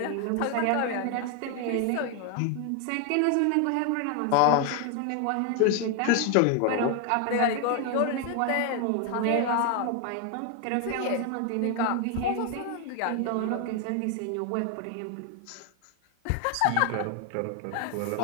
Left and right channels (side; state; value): both; different; correlation 0.01